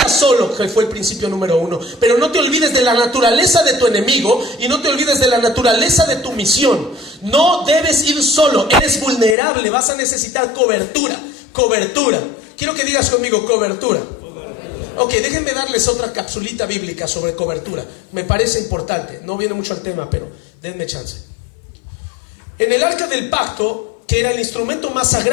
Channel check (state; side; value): drops out; right; at 9.3 s